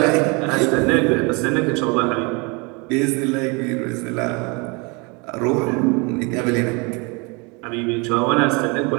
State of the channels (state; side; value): quieter; left; 29.6 dB